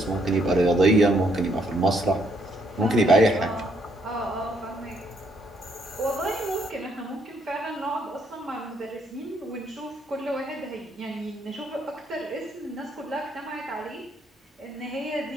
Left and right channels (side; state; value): both; normal; correlation 0.71